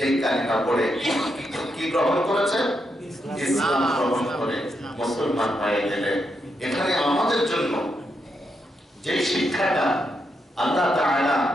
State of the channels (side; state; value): both; normal; correlation 0.82